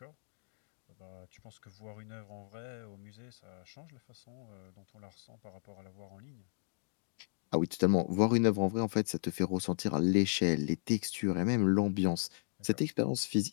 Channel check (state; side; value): silent; right; digital silence